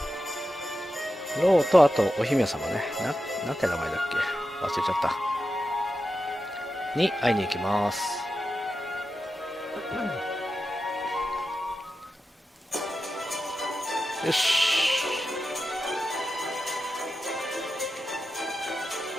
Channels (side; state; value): both; normal; correlation 0.91